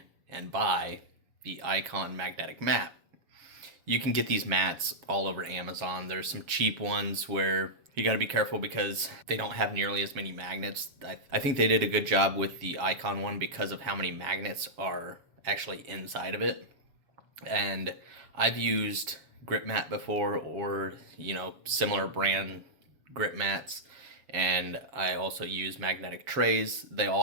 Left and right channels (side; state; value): left; late; 7.3 ms